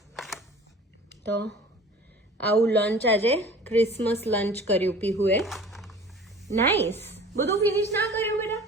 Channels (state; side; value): normal; both; correlation 0.44